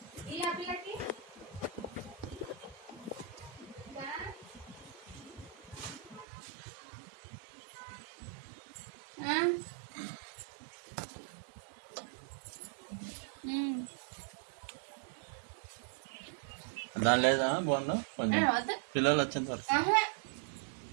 దాని లేదా బాగుందా కొంచెం పిల్లలు వచ్చేంత వరకు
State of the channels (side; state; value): left; drops out; at 6.2 s